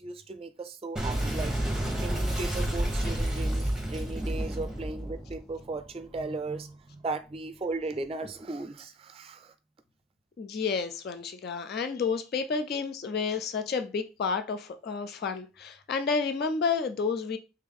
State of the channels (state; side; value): normal; both; correlation 0.48